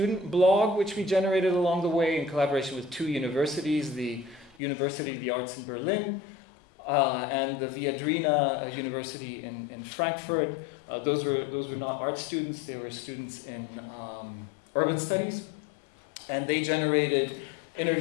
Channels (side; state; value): right; drops out; at 4.5 s